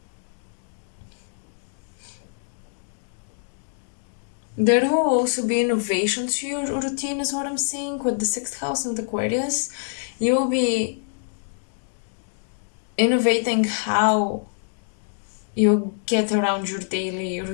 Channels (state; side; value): silent; right; digital silence